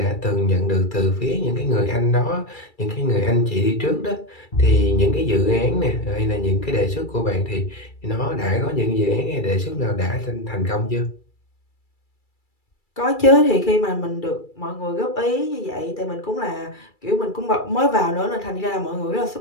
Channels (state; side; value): late; right; 2.3 ms